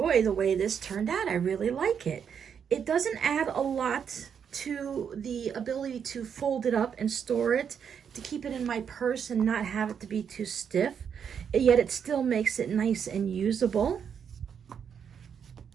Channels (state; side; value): quieter; left; 7.5 dB